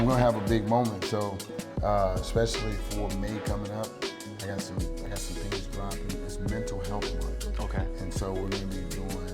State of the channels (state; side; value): identical; both; correlation 1.00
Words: gonna have a big moment, so especially for May coming up, I got some things dropping. It's Mental Health Month. Okay. And so we're gonna be